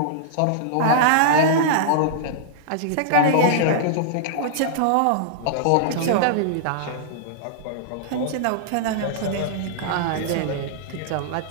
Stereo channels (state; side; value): different; both; correlation -0.02